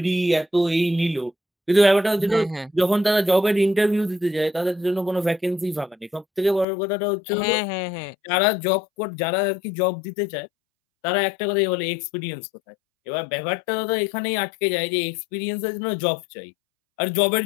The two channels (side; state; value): right; drops out; at 6.7 s